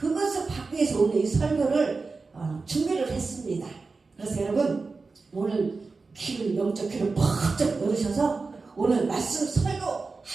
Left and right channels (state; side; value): quieter; left; 4.1 dB